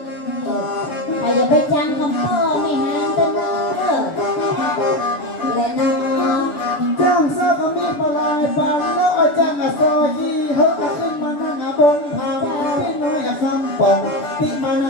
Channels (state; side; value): late; right; 6.9 ms